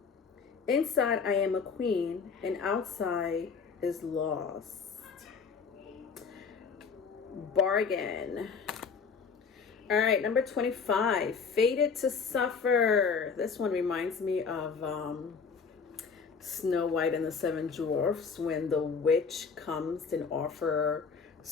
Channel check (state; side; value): quieter; right; 5.5 dB